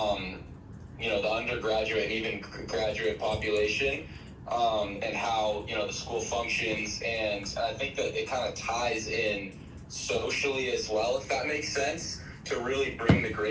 you know, the undergraduate and even graduate population, and how, you know, the school functions. And I think that it kind of ties in socially as well, if that makes sense, to really bring the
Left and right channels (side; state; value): both; identical; correlation 1.00